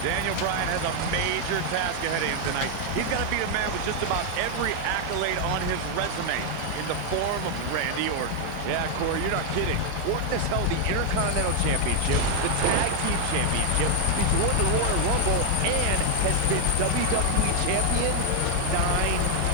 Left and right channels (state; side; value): different; both; correlation 0.00